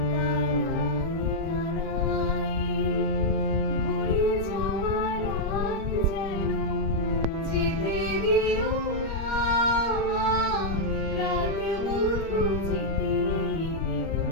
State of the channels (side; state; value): right; late; 25 ms